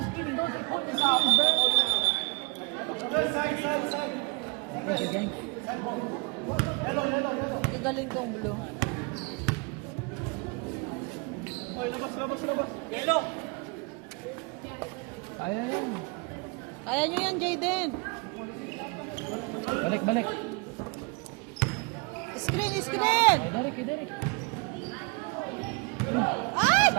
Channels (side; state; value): left; quieter; 30.5 dB